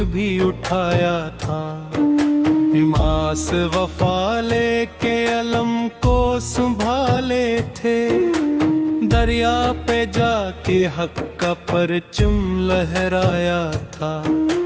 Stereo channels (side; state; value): both; identical; correlation 1.00